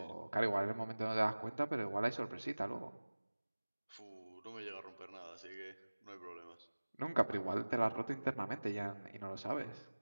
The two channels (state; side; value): inverted; both; correlation -1.00